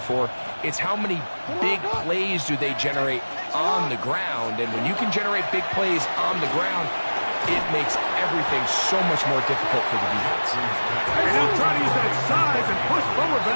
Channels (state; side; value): inverted; both; correlation -1.00